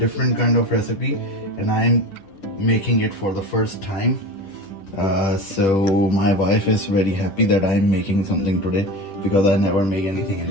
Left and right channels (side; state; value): right; late; 10 ms